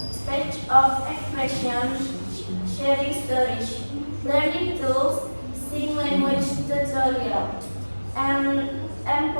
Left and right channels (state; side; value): inverted; both; correlation -1.00